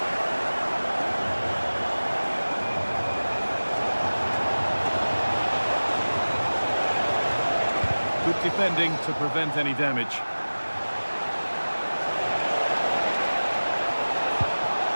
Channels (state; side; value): inverted; both; correlation -1.00